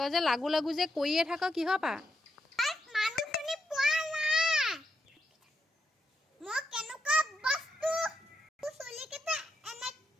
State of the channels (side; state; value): both; normal; correlation 0.82